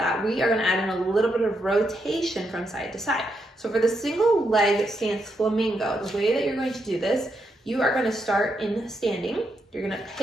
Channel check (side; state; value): both; normal; correlation 0.81